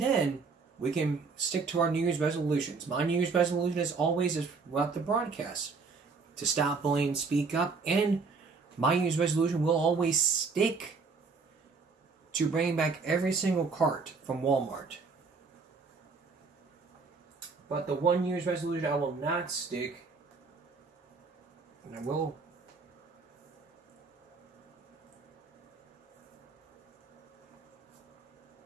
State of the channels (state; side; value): quieter; left; 4.6 dB